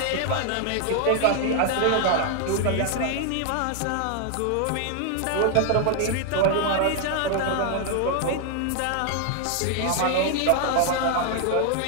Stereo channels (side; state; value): both; different; correlation 0.00